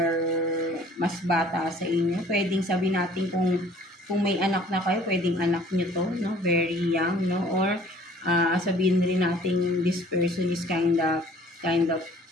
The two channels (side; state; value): both; normal; correlation 0.53